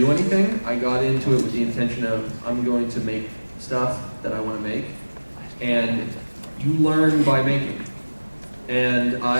anything. I got into it with the intention of, I'm going to make stuff that I want to make. And you learn by making. And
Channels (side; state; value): both; inverted; correlation -1.00